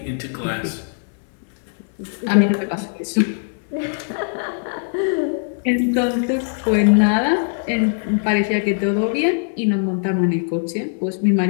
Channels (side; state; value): right; silent; 65 dB below the other